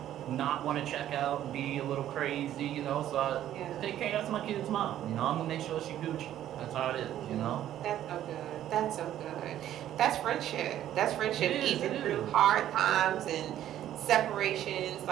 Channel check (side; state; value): left; quieter; 11.9 dB